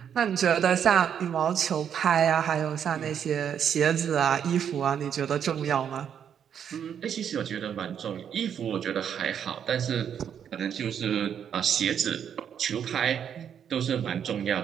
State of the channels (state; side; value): quieter; left; 8.5 dB